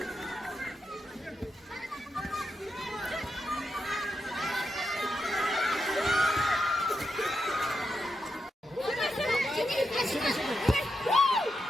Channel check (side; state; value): both; normal; correlation 0.85